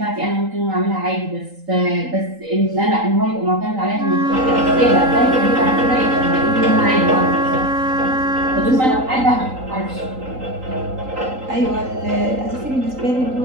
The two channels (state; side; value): late; left; 3.8 ms